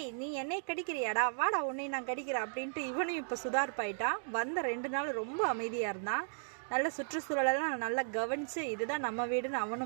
நீ என்னை கடிக்கிறியாடா, வாடா உன்னை நான் கடிக்கிறேன் அப்படின்ட்டு இவனையும் இப்போ சுதார்ப்பாயிட்டான். வந்த 2 நாள் ரொம்ப அமைதியாக இருந்தான். நல்ல சுற்றுச்சூழலெல்லாம் நல்லா கவனித்து இதுதான் நம்ம வீடுன்னு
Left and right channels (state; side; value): silent; left; digital silence